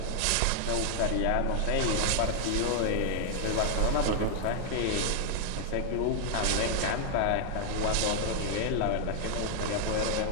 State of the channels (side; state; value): both; different; correlation 0.00